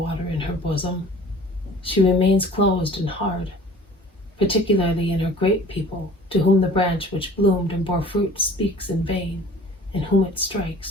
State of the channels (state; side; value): normal; both; correlation 0.47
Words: in her bosom. She remains closed and hard, particularly in her great people, to whom the branch which bloomed and bore fruit speaks in vain, and whom it